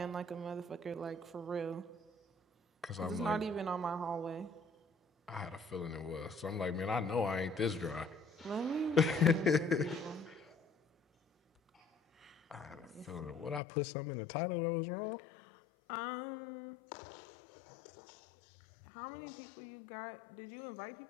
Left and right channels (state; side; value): drops out; right; at 13.6 s